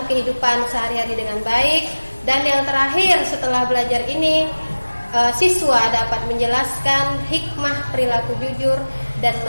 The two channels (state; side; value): inverted; both; correlation -1.00